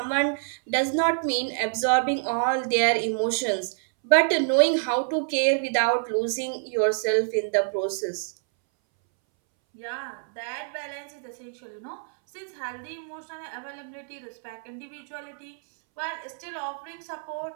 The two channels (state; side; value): silent; left; 60 dB below the other